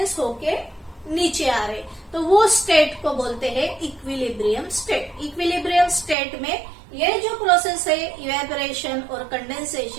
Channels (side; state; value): left; drops out; at 6.2 s